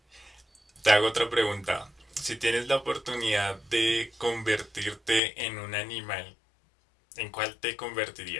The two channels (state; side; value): drops out; right; at 5.2 s